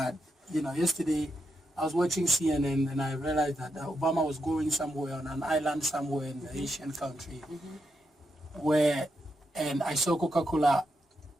yesterday I was watching CNN and I realized that Obama was going somewhere on an island somewhere in the Asian country and I saw Coca-Cola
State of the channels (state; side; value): normal; both; correlation 0.83